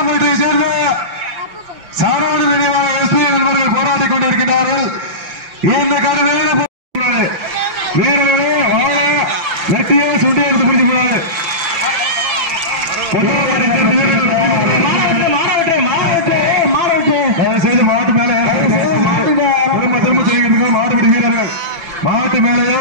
சேர்ந்த சாரோடு நினைவாக எஸ்பி என்பவர்கள் போராடிக் கொண்டிருக்கிறார்கள். இந்த கருவையில வீரர்களே வாழ நெட்டியே சுண்டி எடுத்து பிடிச்சு போறாரு. செய்து மாவட்ட மேல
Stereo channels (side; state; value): left; late; 5.9 ms